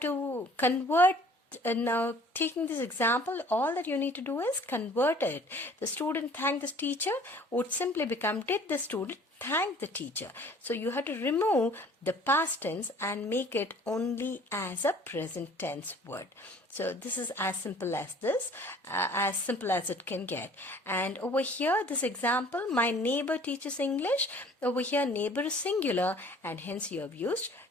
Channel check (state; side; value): normal; both; correlation 0.52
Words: convert. Now, taking this example, all that you need to do is convert it. The student thanked the teacher would simply become did the student thank the teacher. So you have to remove the past tense and make it only as a present tense word. So this is as simple as this, as simple as it can get. And over here, this example, my neighbor teaches English. Over here, neighbor is singular, and hence you have used